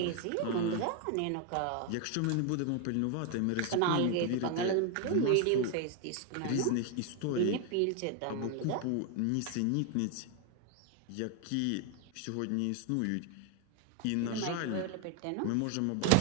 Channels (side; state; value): both; different; correlation 0.01